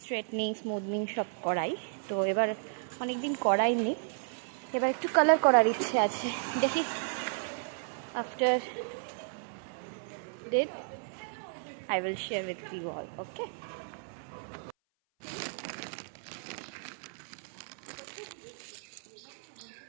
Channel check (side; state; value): left; silent; 55 dB below the other